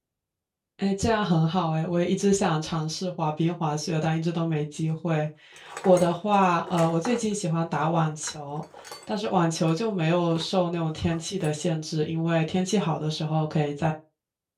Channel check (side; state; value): both; identical; correlation 1.00